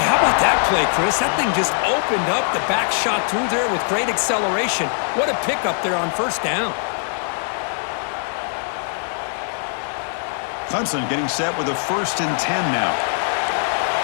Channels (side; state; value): right; silent; digital silence